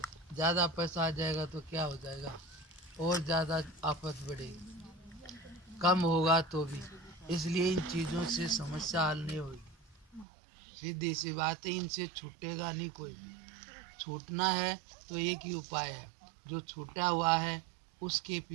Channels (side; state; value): left; drops out; at 10.2 s